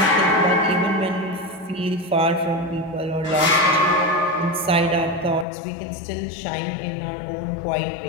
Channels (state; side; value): drops out; right; at 5.5 s